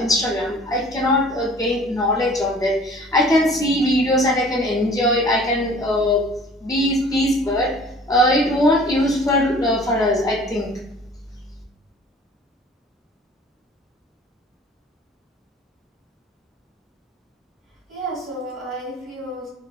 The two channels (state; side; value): normal; both; correlation 0.49